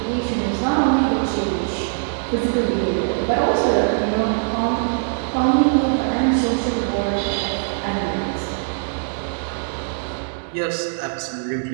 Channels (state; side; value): silent; left; digital silence